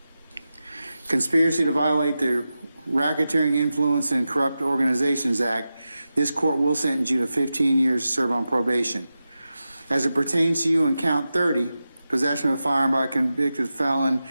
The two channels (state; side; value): inverted; both; correlation -0.92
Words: conspiracy to violate the Racketeering Influence and Corrupt Organizations Act, this court will sentence you to 15 years to serve on probation. As it pertains to you in count 30, possession of a firearm by a convicted felon,